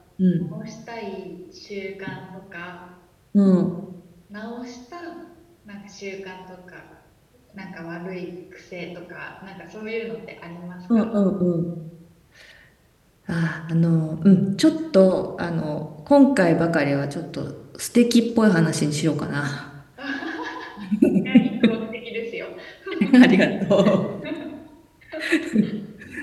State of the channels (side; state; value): both; identical; correlation 1.00